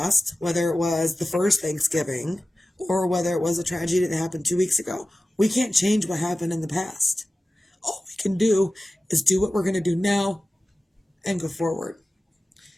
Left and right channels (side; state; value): both; normal; correlation 0.95